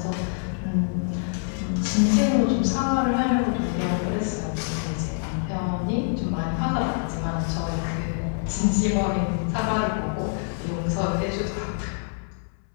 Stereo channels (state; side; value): silent; right; 61 dB below the other